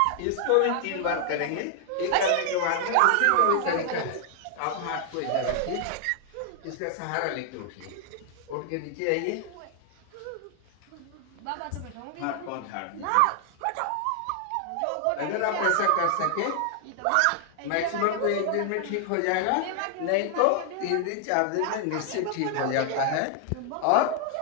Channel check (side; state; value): both; different; correlation 0.00